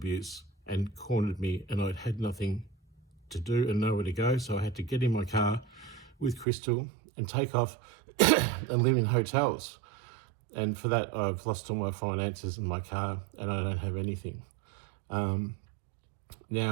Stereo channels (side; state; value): left; drops out; at 6.5 s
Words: and cornered me, and I'd had nothing to do and nowhere to go, so I had to get in my car with Crystal and take off and live in hotels. And for that, I've lost all my finances in my car, and I don't have anything. While